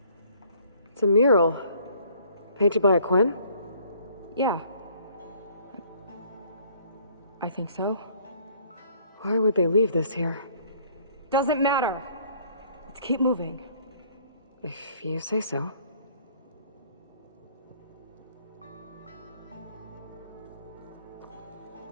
It's a mural. Painted by a Quen? Yeah. I think so. Why would they leave this here? Doesn't matter. Let's keep moving. If you say so.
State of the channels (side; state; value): both; inverted; correlation -0.59